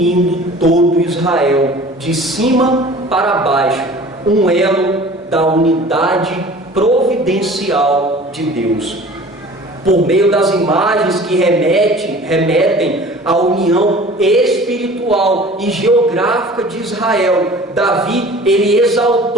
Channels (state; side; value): normal; both; correlation 0.45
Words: todo Israel, de cima para baixo, um elo da unidade providencial de Deus. Por meio das imagens que remetem à união espiritual e geográfica de Israel, Davi, ele